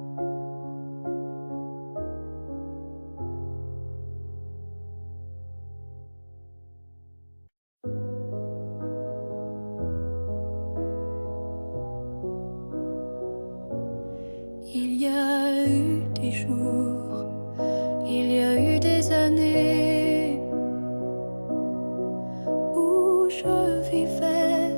Il y a eu des jours, il y a eu des années où je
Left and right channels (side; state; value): both; inverted; correlation -1.00